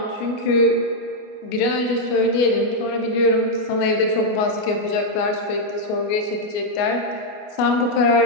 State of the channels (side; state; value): right; late; 29 ms